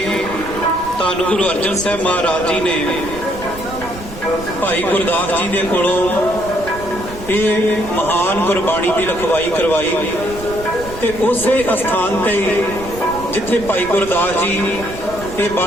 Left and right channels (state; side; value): noise; right; rumble, 14 dB below the sound